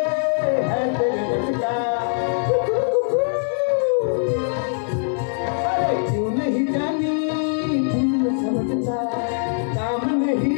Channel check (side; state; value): right; silent; digital silence